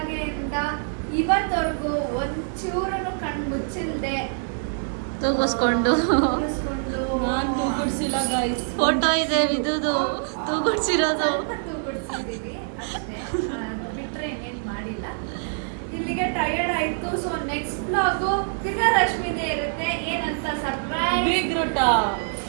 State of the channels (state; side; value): silent; left; digital silence